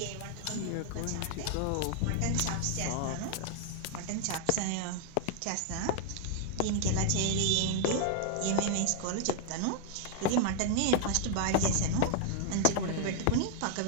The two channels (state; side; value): different; both; correlation 0.00